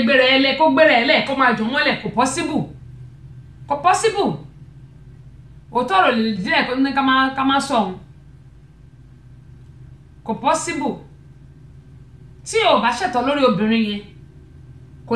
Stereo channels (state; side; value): identical; both; correlation 1.00